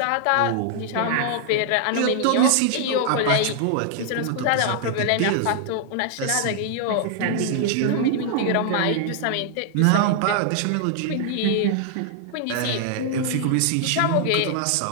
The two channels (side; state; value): both; different; correlation 0.00